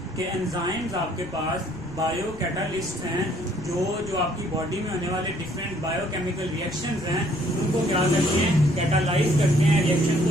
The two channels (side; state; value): left; noise; rumble, 21 dB below the sound